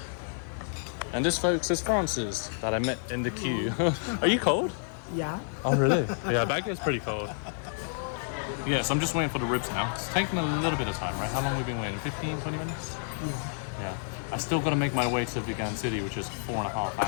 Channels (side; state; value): right; silent; digital silence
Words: And this folks is Francis that I met in the queue. Are you cold? Yeah. Oh really? Yeah, Baguio's pretty cold. Yes, I'm just waiting for the ribs now. It's taking a little bit of time, right? How long have we been waiting? 15, 20 minutes? Yeah. I still got to make my way to Vigan City, which is 4.5